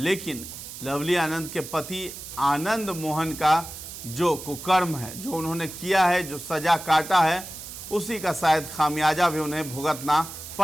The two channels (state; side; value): noise; right; hiss, 11 dB below the sound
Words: लवली आनंद के पति आनंद मोहन का जो कुकर्म है, जो उन्होंने किया है, जो सज़ा काटा है, उसी का शायद खामियाजा भी उन्हें भुगतना